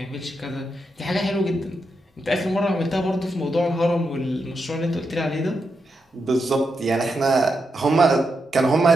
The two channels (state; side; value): normal; both; correlation 0.85